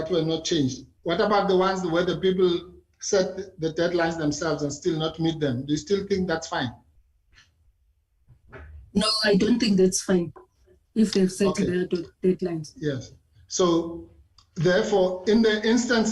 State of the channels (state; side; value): identical; both; correlation 1.00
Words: were not changed. What about the ones where the people set the deadlines themselves and still not meet them? Do you still think that's fine? No, I don't think that's fine if they've set their deadlines. Yes. So therefore, in the